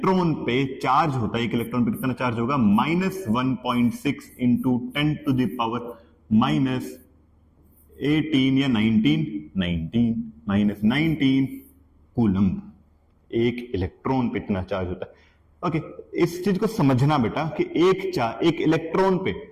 पे चार्ज होता है, एक इलेक्ट्रॉन पे कितना चार्ज होगा? -1.6 इंटू 10 टू द पावर -18 या 19 कूलम। एक इलेक्ट्रॉन पे इतना चार्ज होता है। ओके, इस चीज को समझना बेटा कि एक इलेक्ट्रॉन पे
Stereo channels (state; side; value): identical; both; correlation 1.00